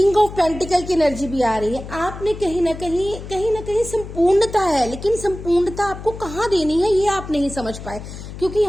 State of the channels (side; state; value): left; noise; hum, 11 dB below the sound